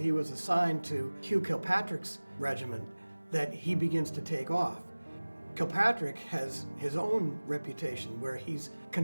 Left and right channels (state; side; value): inverted; both; correlation -1.00